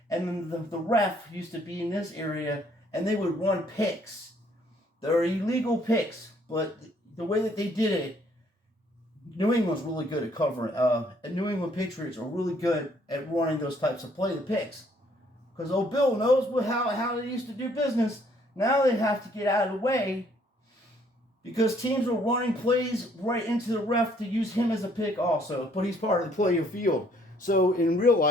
And then the ref used to be in this area, and they would run picks. They're illegal picks, but the way that they did it, New England's really good at covering. And New England Patriots are really good at running those types of play, the picks. Because old Bill knows how they used to do business. Now they have to get out of the way because teams are running plays right into the ref to use him as a pick also. But he's part of the play of field. So in real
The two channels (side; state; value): both; normal; correlation 0.65